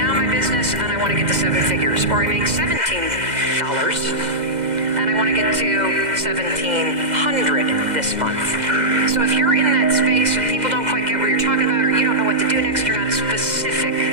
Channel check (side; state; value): left; late; 2.0 ms